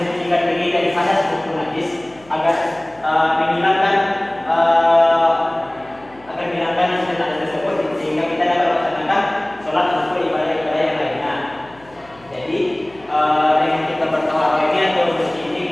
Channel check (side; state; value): left; noise; hum, 27 dB below the sound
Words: diri dari hadas maupun najis agar menghilangkan hal tersebut sehingga kita dapat melaksanakan sholat maupun ibadah-ibadah yang lainnya. Jadi dengan kita bertaharah ini atau bersih ini